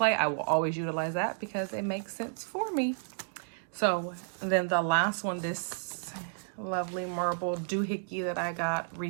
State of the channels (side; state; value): left; silent; digital silence